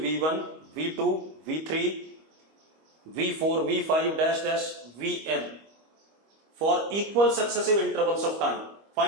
v2 v3 v4 v5 dash dash vn for equal successive intervals of time,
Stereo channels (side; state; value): left; late; 25 ms